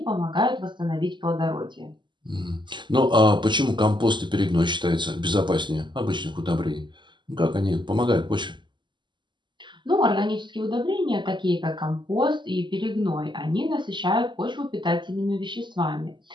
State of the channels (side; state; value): left; late; 0.22 ms